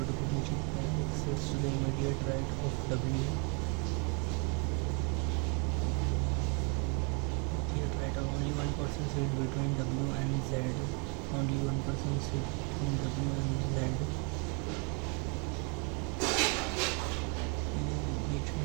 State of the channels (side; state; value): left; quieter; 34.1 dB